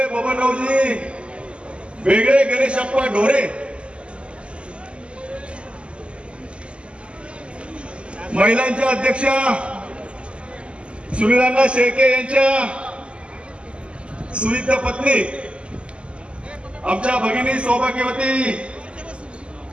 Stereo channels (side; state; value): left; late; 0.054 ms